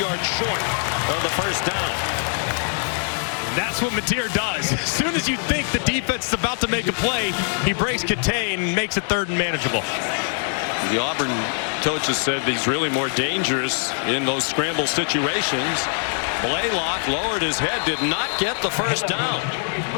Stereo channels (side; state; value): right; silent; 64 dB below the other